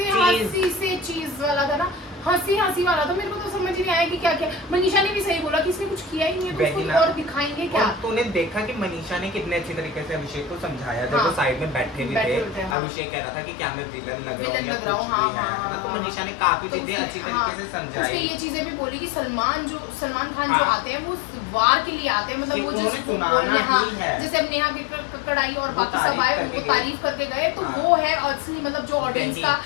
से चीज वाला था ना, हंसी वाला था, मेरे को तो समझ ही नहीं आया कि क्या क्या। मनीषा ने भी सही बोला कि इसने कुछ किया ही नहीं है, तो उसको और दिखाएंगे क्या। तूने देखा कि मनीषा ने कितने अच्छी तरीके से अभिषेक को समझाया, जब वो साइड में बैठे भी थे, अभिषेक कह रहा था कि क्या मैं विलन लग रहा हूँ या कुछ भी है ना, तो मनीषा ने काफी चीजें अच्छी तरीके से समझाई। ये चीजें भी बोली कि सलमान खान जो आते हैं वो वार के लिए आते हैं, मतलब वो जैसे अब नेहा कक्कड़ आई और बाकी सब आए, उनको तारीफ करके गए, तो वो है असली, मतलब जो ऑडियंस का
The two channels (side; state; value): right; drops out; at 12.8 s